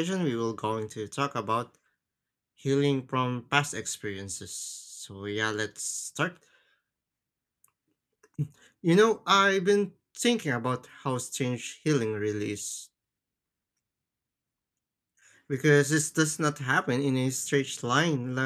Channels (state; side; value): identical; both; correlation 1.00